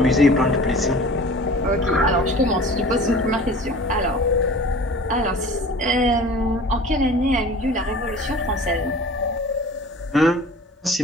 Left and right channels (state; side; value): normal; both; correlation 0.43